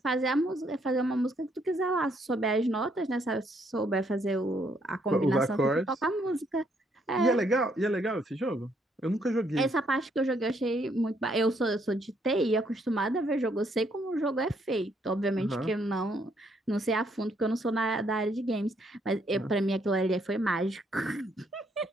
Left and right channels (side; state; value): both; normal; correlation 0.71